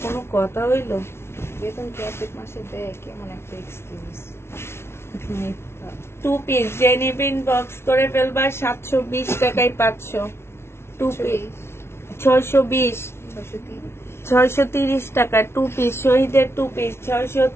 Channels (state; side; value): late; right; 0.12 ms